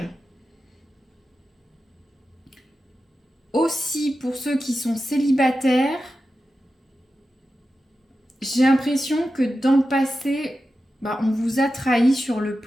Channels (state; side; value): normal; both; correlation 0.92